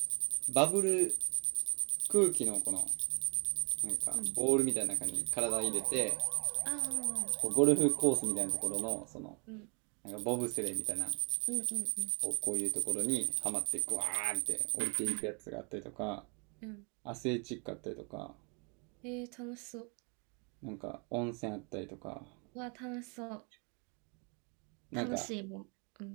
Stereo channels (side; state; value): left; quieter; 34.8 dB